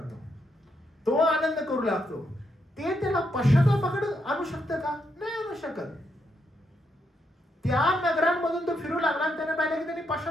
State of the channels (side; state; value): both; normal; correlation 0.79